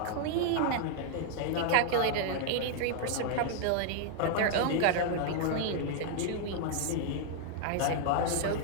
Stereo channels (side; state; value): both; different; correlation -0.01